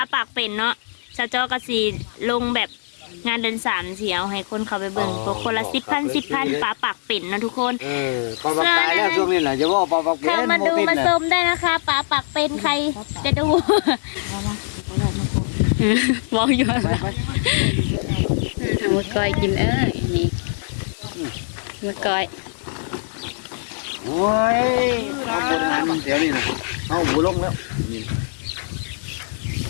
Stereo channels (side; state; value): right; silent; 62 dB below the other